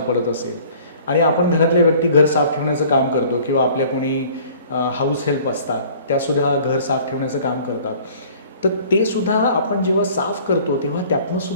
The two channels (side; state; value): both; inverted; correlation -0.51